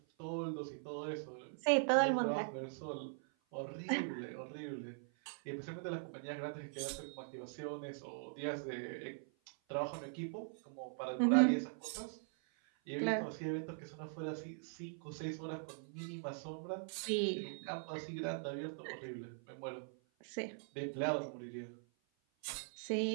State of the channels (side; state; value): left; silent; 50 dB below the other